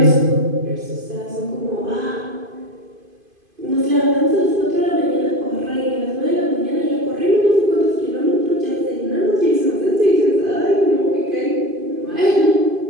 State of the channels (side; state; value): left; late; 2.5 ms